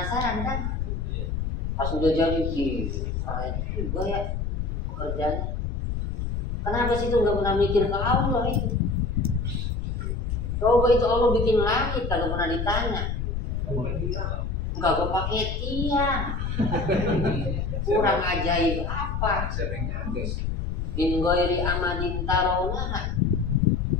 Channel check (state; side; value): noise; left; rumble, 2 dB below the sound